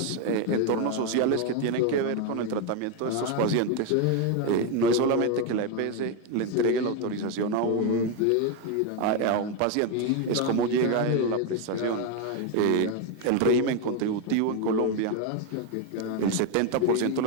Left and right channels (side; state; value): both; different; correlation 0.02